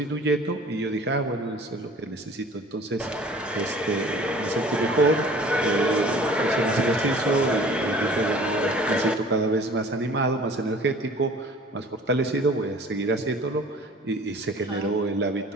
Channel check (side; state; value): both; normal; correlation 0.47